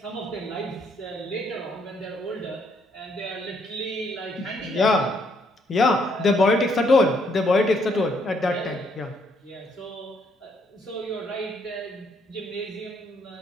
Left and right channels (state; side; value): normal; both; correlation 0.71